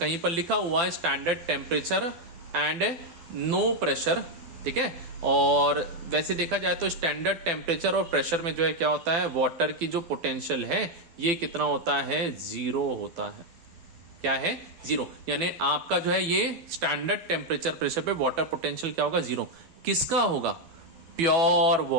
पर लिखा हुआ है standard temperature and no pressure, ठीक है। और वैसे देखा जाए तो स्टैंडर्ड टेम्परेचर और प्रेशर में जो है क्या होता है, वाटर की जो पोटेंशियल है ये कितना होता है, 0 होता है। क्या है, 0, यानी आपका जो है ये स्टैंडर्ड टेम्परेचर प्रेशर पे वाटर पोटेंशियल क्या होगा, 0। किसका होगा, प्योर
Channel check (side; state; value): left; late; 12 ms